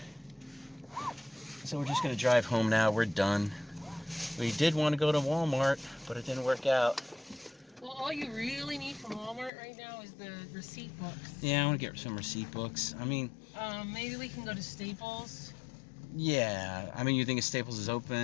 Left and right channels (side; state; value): right; drops out; at 9.5 s